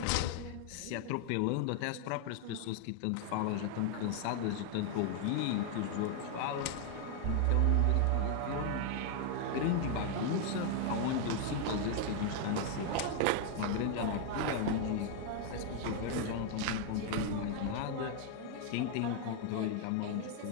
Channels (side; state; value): both; different; correlation 0.00